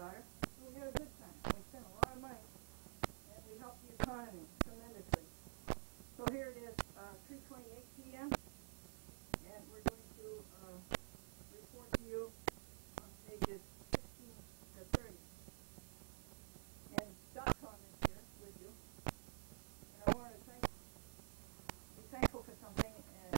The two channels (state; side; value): silent; left; digital silence